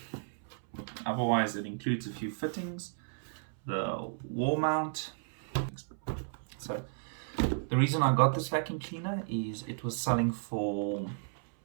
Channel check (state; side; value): silent; left; 55 dB below the other